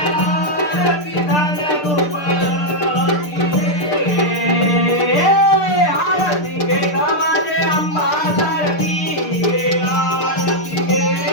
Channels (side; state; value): right; late; 6.7 ms